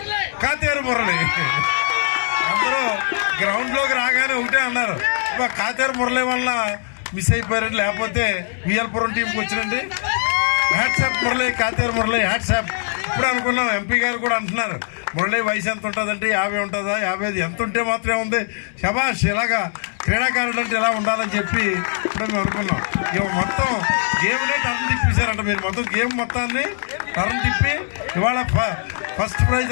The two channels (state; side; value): silent; right; digital silence